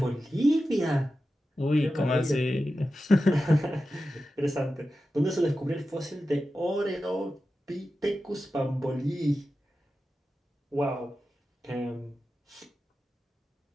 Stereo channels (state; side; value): normal; both; correlation 0.92